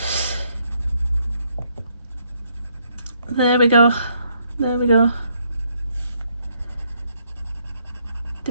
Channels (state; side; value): inverted; both; correlation -0.72